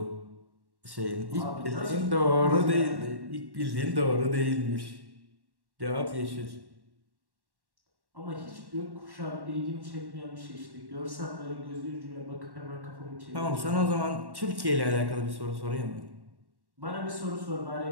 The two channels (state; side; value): late; left; 1.1 ms